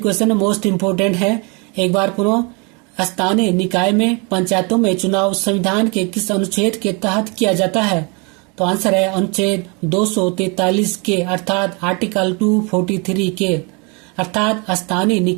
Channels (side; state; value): left; quieter; 31.5 dB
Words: मोस्ट इम्पोर्टेंट है। एक बार पुनः स्थानीय निकाय में पंचायतों में चुनाव संविधान के किस अनुच्छेद के तहत किया जाता है? तो आंसर है अनुच्छेद 243 के अर्थात आर्टिकल 243 के। अर्थात स्थानीय